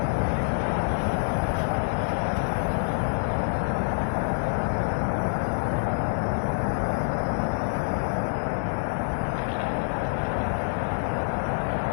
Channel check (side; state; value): right; silent; digital silence